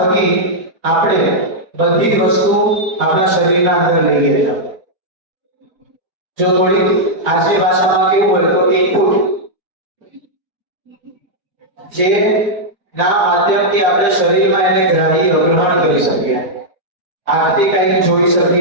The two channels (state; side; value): late; left; 4.3 ms